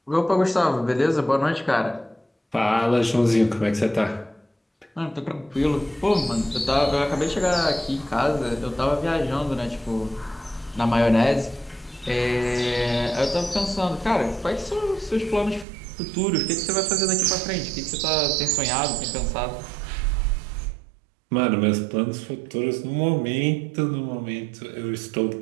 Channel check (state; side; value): drops out; left; at 15.7 s